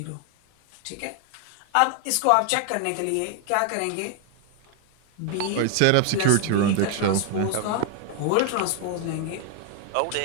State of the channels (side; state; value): both; different; correlation 0.00